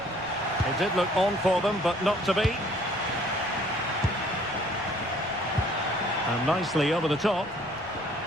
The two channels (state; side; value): noise; left; rumble, 23 dB below the sound